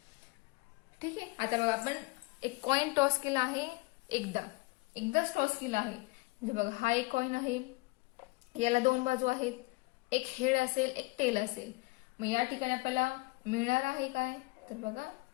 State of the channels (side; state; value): right; quieter; 25.2 dB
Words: ठीक आहे. आता बघा, आपण एक कॉइन टॉस केला आहे, एकदाच टॉस केला आहे. म्हणजे बघा, हा एक कॉइन आहे, याला 2 बाजू आहेत, एक हेड असेल, एक टेल असेल. मग या ठिकाणी आपल्याला मिळणार आहे काय, तर बघा,